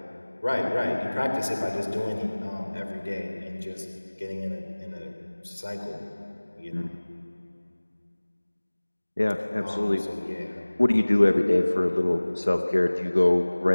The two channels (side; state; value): both; inverted; correlation -1.00